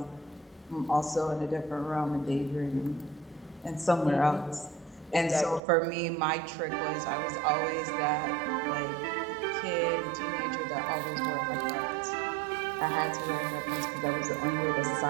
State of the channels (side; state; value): left; drops out; at 5.6 s